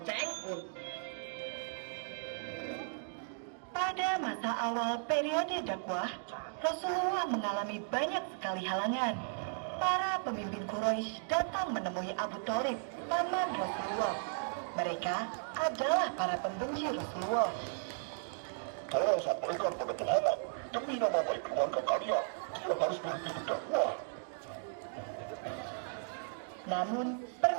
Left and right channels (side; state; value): left; silent; digital silence